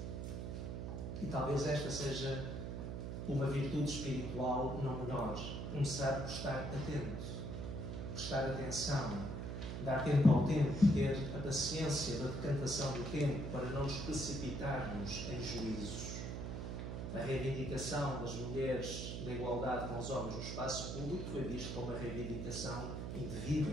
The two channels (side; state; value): right; noise; hum, 4 dB below the sound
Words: E talvez esta seja uma virtude espiritual não menor. Começar por estar atento, prestar atenção, dar tempo ao tempo, ter a paciência da decantação do tempo para não nos precipitarmos em juízos. A reivindicação das mulheres da igualdade com os homens no espaço público foi vista como uma reivindicação